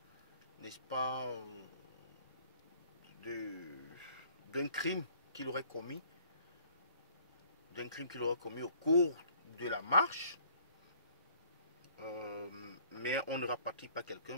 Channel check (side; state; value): both; inverted; correlation -0.57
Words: n'est-ce pas, d'un crime qu'il aurait commis, au cours de la marche. Mais on ne rapatrie pas